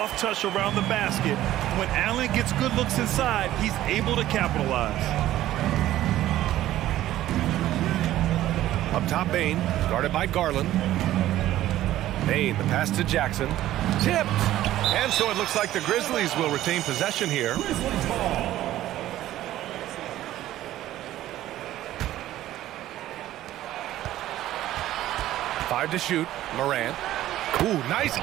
touch around the basket, when Allen gets good looks inside, he's able to capitalize. Up top, Bane. Guarded by Garland. Bane, the pass to Jackson. Tipped. And so it looks like the Grizzlies will retain possession here. 5 to shoot. Morant. Ooh, nice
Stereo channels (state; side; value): quieter; left; 14.0 dB